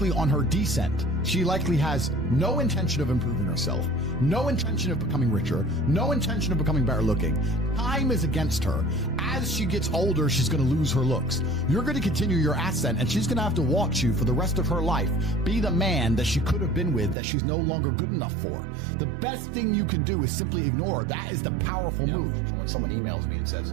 on her descent. She likely has no intention of improving herself, no intention of becoming richer, no intention of becoming better looking. Time is against her. As she gets older, she's going to lose her looks. You're going to continue your ascent, and she's going to have to watch you for the rest of her life be the man that she could have been with that she's no longer good enough for. The best thing you can do is simply ignore her. That is the powerful move. When someone emails me and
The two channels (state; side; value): drops out; left; at 17.2 s